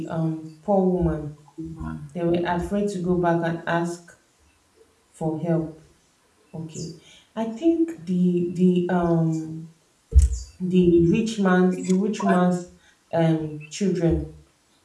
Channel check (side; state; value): both; identical; correlation 1.00